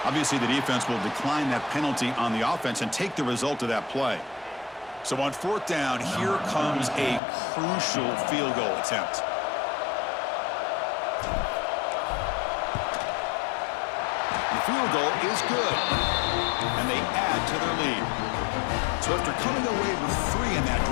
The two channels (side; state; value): right; drops out; at 7.2 s